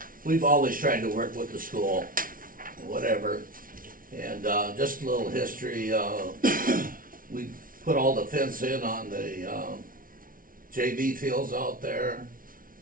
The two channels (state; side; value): late; left; 0.40 ms